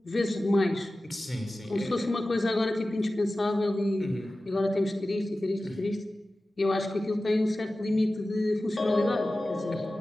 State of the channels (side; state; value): both; normal; correlation 0.96